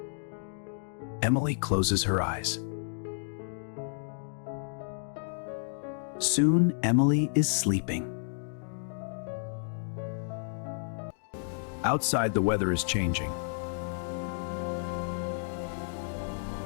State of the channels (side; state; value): right; silent; digital silence